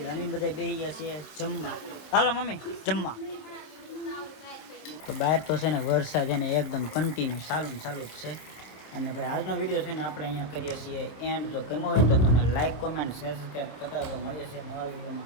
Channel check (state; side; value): late; right; 26 ms